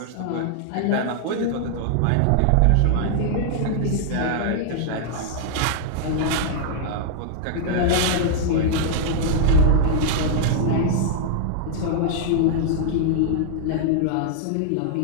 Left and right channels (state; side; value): different; both; correlation -0.01